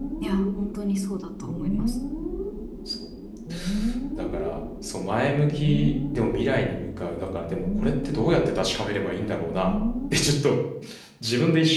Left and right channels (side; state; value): both; identical; correlation 1.00